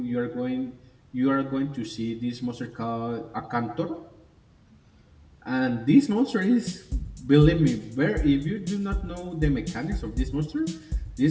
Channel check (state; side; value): identical; both; correlation 1.00